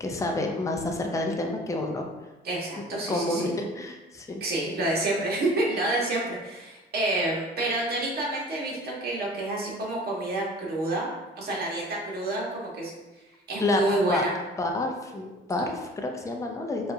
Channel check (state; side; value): normal; both; correlation 0.45